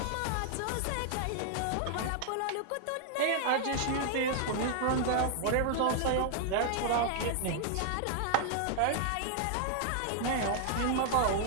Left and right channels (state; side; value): different; both; correlation 0.00